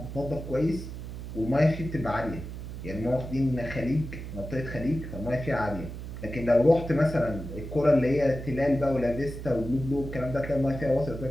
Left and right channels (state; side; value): noise; right; hum, 9 dB below the sound